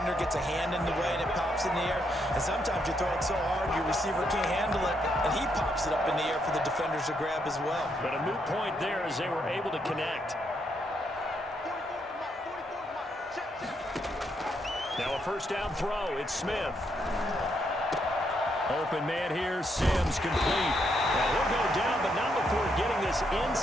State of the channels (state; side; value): normal; both; correlation 0.77